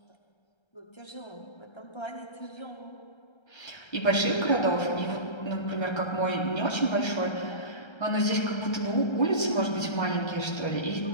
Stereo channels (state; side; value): late; right; 1.3 ms